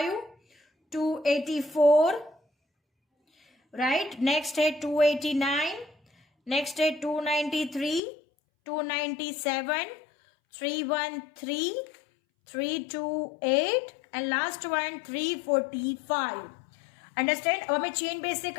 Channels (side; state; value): right; drops out; at 8.0 s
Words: 284, right, next है 289, next है 293, 297, 313, 328 एंड लास्ट वन 345. अंडरस्टैंड. अब हमें चेन बेस से